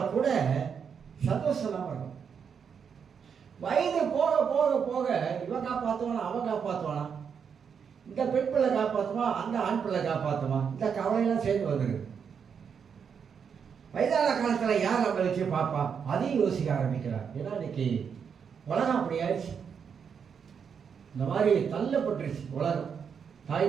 கூட சந்தோஷம் தான் வரும். வயது போக போக போக இவன் காப்பாற்றுவானா, அவன் காப்பாற்றுவானா, இந்த பெண் பிள்ளை காப்பாற்றுவான், அந்த ஆண் பிள்ளை காப்பாற்றுவான், இந்த கவலையெல்லாம் சேர்ந்து வந்துருக்கு. வயதான காலத்தில் யார் நம்மளை வச்சு பார்ப்பா, அதையும் யோசிக்க ஆரம்பிக்கிறார். ஏன்னா இன்னைக்கு உலகம் அப்படி ஆயிடுச்சு. இந்த மாதிரி தள்ளப்பட்டுருச்சு உலகம்.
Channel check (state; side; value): quieter; left; 6.9 dB